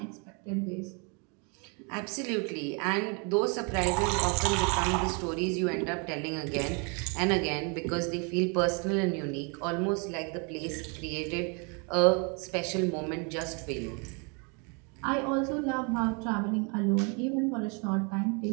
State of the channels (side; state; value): left; quieter; 34.8 dB